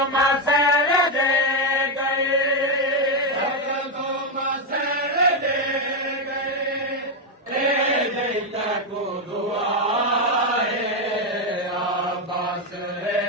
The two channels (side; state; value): both; normal; correlation 0.05